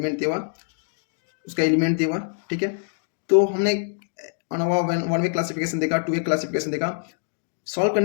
दिया, उसका एलिमेंट दिया, ठीक है. तो हमने अनोवा वन वे क्लासिफिकेशन देखा, टू वे क्लासिफिकेशन देखा. सॉल्व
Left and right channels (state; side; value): silent; right; digital silence